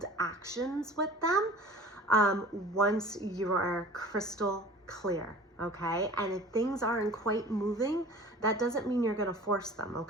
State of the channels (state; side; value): normal; both; correlation 0.43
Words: actions with them once you are crystal clear. Okay, and if things aren't quite moving, that doesn't mean you're going to force them.